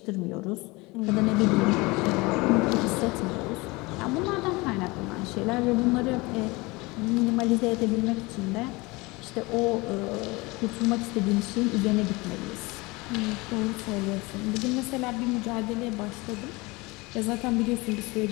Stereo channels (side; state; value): right; quieter; 23.8 dB